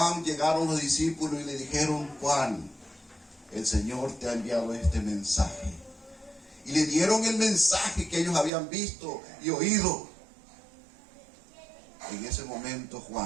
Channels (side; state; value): left; drops out; at 8.5 s